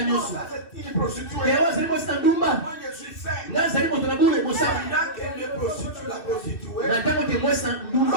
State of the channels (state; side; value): late; right; 2.6 ms